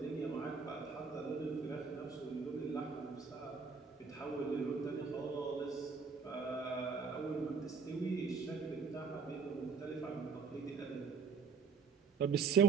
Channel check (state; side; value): quieter; left; 5.4 dB